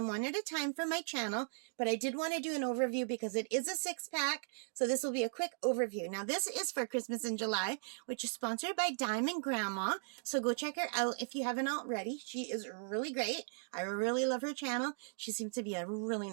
one at a time for my channel, but I did want to do an overview because it is a 6-pack, so this will be a quick overview. Now this is for Christmas in July, which is sponsored by Diamond Grandma, so go check her out if you haven't already. She is really great. I really love her channel. She seems to be a really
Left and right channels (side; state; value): left; silent; digital silence